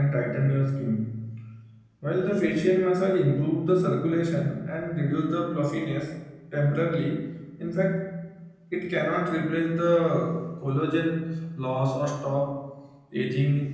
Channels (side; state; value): both; identical; correlation 1.00